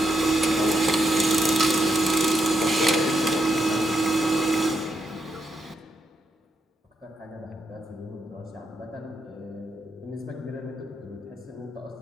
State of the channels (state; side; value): normal; both; correlation 0.80